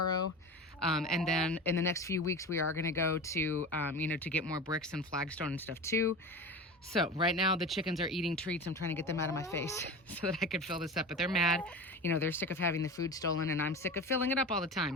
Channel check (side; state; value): both; normal; correlation 0.30